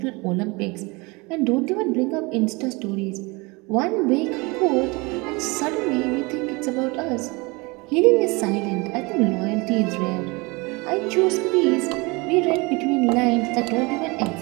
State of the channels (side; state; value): left; quieter; 26.3 dB